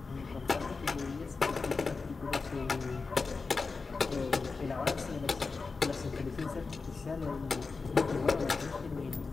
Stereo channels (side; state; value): right; quieter; 4.3 dB